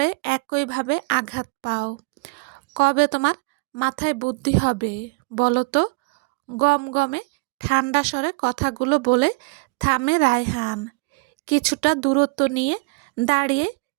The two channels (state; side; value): quieter; left; 29.4 dB